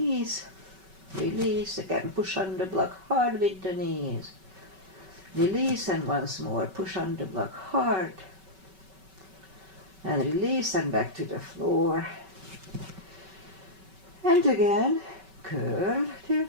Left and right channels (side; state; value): left; late; 5.3 ms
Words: Release. Again, push on the block hard with the knees. Release, and once more, push on the block hard. And release, and back to the floor. And again, curl,